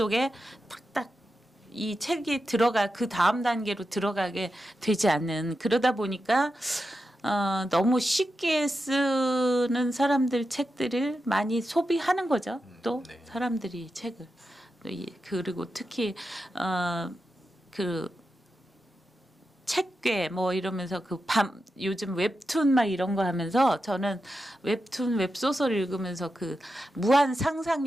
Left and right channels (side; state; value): both; normal; correlation 0.89